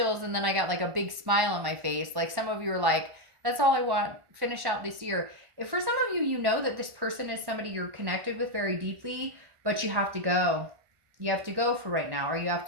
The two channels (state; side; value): late; left; 1.5 ms